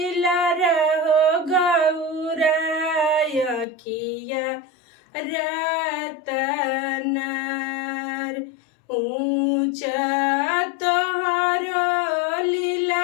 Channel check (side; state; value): right; drops out; at 3.7 s